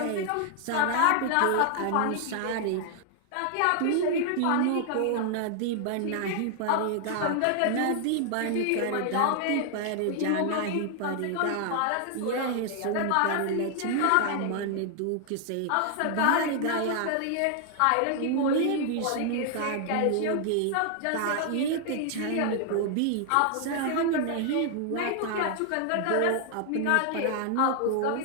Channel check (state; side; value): different; both; correlation 0.00